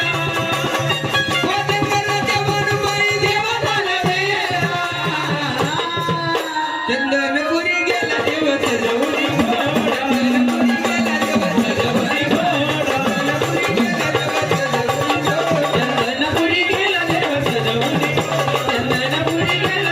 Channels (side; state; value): both; identical; correlation 1.00